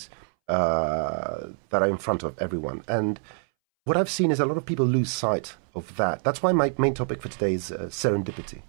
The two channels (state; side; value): silent; left; 61 dB below the other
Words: that are in front of everyone. And what I've seen is a lot of people lose sight of that. That's why my main topic for today is serendipity.